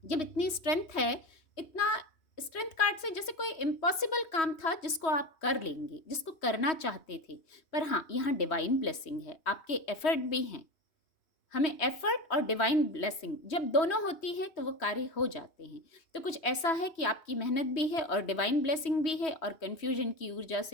जब इतनी स्ट्रेंथ है, इतना स्ट्रेंथ कार्ड से जैसे कोई इम्पॉसिबल काम था जिसको आप कर लेंगे, जिसको करना चाहते थे। पर हाँ, यहाँ डिवाइन ब्लेसिंग है, आपके एफर्ट भी हैं। हमें एफर्ट और डिवाइन ब्लेसिंग जब दोनों होती है तो वो कार्य हो जाते हैं। तो कुछ ऐसा है कि आपकी मेहनत भी है और डिवाइन ब्लेसिंग भी है, और कन्फ्यूजन की ऊर्जा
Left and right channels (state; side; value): late; right; 3.1 ms